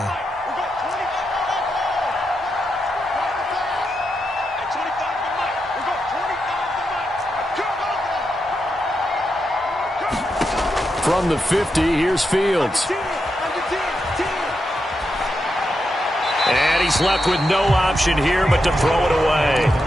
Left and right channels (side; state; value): both; normal; correlation 0.85